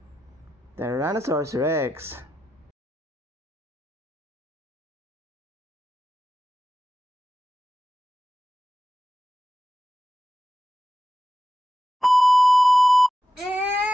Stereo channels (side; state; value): both; normal; correlation 0.91